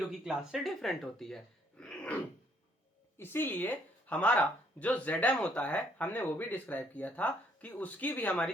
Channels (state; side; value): normal; both; correlation 0.67